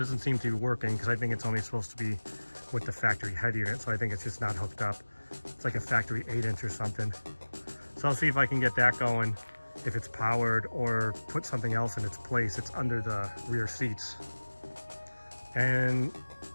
seem to be working because I think it's only supposed to be with the factory head unit, so I think it's just not hooked up. It's like a factory 8-inch or something. So I'll see if I can get that going, if it's powered, or put something else in its place. It's under the rear seats. And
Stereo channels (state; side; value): inverted; both; correlation -1.00